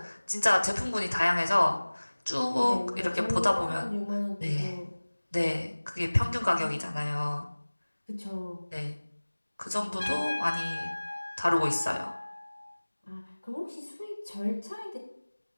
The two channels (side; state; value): both; inverted; correlation -1.00